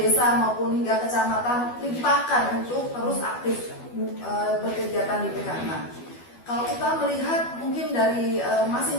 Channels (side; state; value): right; late; 12 ms